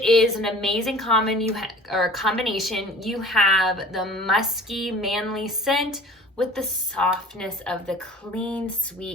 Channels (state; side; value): normal; both; correlation 0.45